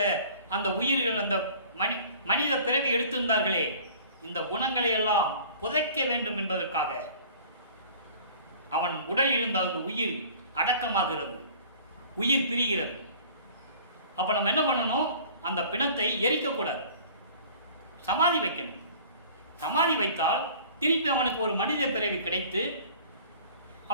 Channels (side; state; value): both; inverted; correlation -0.47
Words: அந்த உயிர்கள், அந்த மனித பிறவி எடுத்திருந்தார்களே, இந்த குணங்களை எல்லாம் புதைக்க வேண்டும் என்பதற்காக அவன் உடலில் இருந்த அந்த உயிர் அடக்கமாகிறது, உயிர் பிரிகிறது. அப்ப நம்ம என்ன பண்ணணும்? அந்த பிணத்தை எரிக்கக்கூடாது, சமாதி வைக்கணும். சமாதி வைத்தால் திருப்பி அவனுக்கு ஒரு மனித பிறவி கிடைத்து